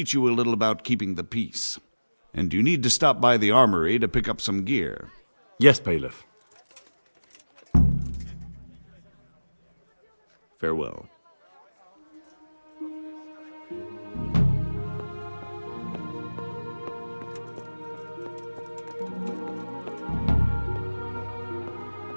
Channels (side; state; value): both; inverted; correlation -1.00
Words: you a little about keeping the peace. And you need to stop by the armory to pick up some gear. Yes, Bailiff. Farewell.